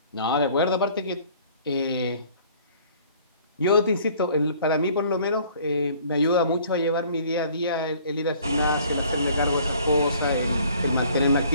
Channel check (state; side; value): inverted; both; correlation -0.55